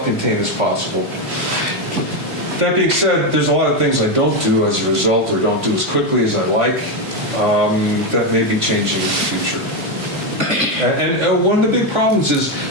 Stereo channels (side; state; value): left; late; 3.5 ms